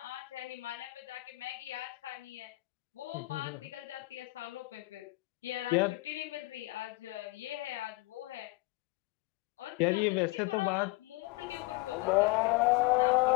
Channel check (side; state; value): right; quieter; 22.4 dB